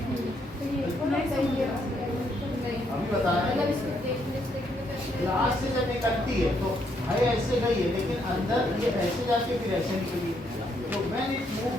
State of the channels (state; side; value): normal; both; correlation 0.74